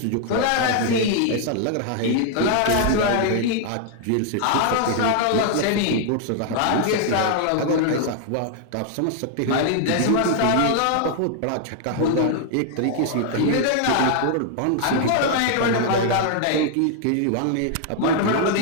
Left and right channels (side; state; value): both; different; correlation 0.00